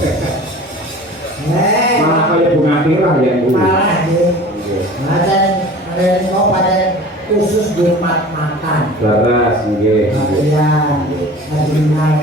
Malah kaya bunga tirah ya Bu. Malah nggih. Ada kok pada khusus di makan. Laras nggih. Iya.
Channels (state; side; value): normal; both; correlation 0.41